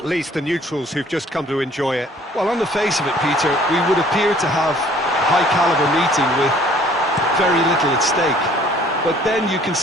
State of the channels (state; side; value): normal; both; correlation 0.56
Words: least the neutrals who've just come to enjoy it. Well, on the face of it, Peter, we would appear to have a high-caliber meeting with very little at stake. But then you